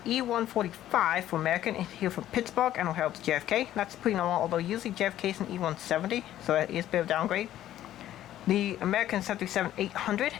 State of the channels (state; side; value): quieter; right; 12.7 dB